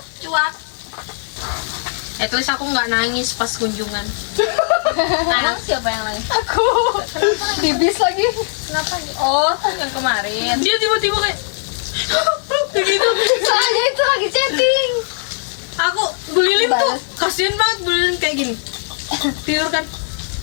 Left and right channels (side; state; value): right; silent; 59 dB below the other